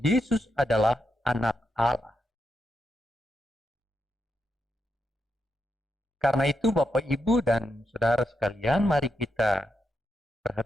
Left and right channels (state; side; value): normal; both; correlation 0.84